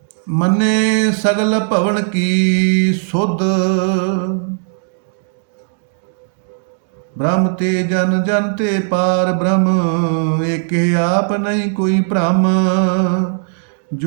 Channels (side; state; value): left; silent; digital silence